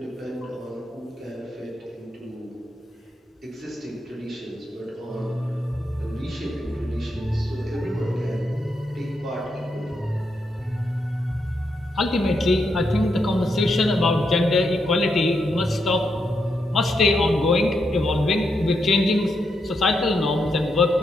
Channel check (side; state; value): both; normal; correlation 0.82